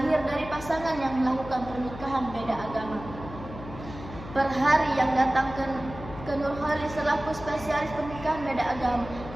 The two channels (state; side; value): noise; left; hum, 13 dB below the sound